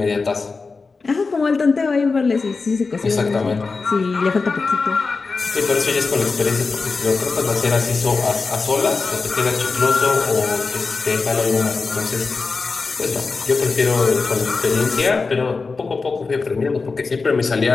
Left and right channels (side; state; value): right; quieter; 4.3 dB